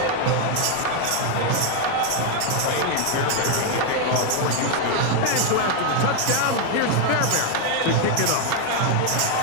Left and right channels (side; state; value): both; different; correlation 0.01